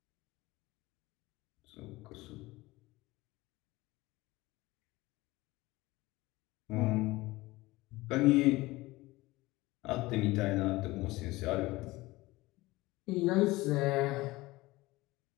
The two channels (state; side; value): quieter; right; 20.0 dB